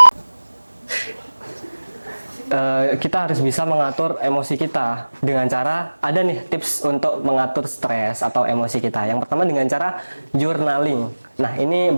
mengatur emosi kita dengan cara, ada nih tips untuk mengatur stres atau emosi kita. Yang pertama dengan cara journaling. Nah, ini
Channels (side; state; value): both; inverted; correlation -1.00